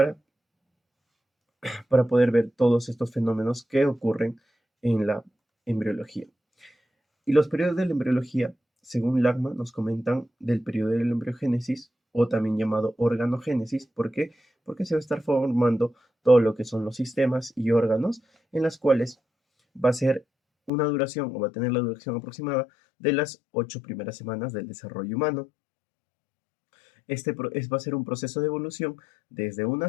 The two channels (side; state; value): right; drops out; at 20.7 s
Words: para poder ver todos estos fenómenos que ocurren en la embriología. Y los periodos de la embriología, según Lagma, nos comentan del periodo de la embriogénesis, o también llamado organogénesis. ¿Por qué? Porque se va a estar formando todo lo que son los sistemas y órganos, en las cuales va a ser una duración, o va a tener la duración aproximada de las 8 primeras semanas del desarrollo humano. Va a ser un proceso de evolución desde una